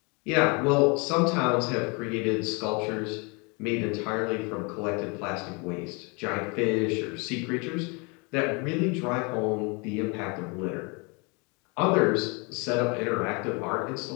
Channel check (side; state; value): right; quieter; 30.9 dB